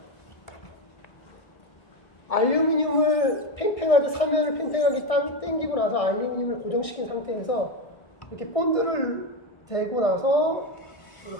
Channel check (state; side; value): late; right; 1.6 ms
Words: 알루미늄을 팽팽하게, 사면을 팽팽하게 당기고 나서 알루미늄을 고정시킨 상태에서 이렇게 본드를 대고 나서